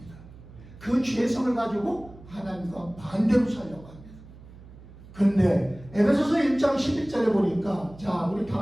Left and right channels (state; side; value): noise; right; hum, 19 dB below the sound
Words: 그 죄성을 가지고 하나님과 반대로 살려고 합니다. 근데 에베소서 1장 11절에 보니까, 자 우리